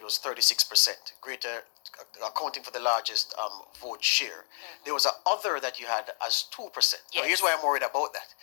was 36%, greater, accounting for the largest vote share. There was a other that you had as 2%. Now here's why I'm worried about that.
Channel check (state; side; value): silent; right; 58 dB below the other